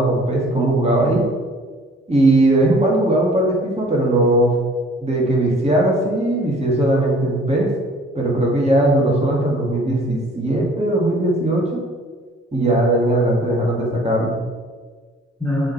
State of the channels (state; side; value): normal; both; correlation 0.53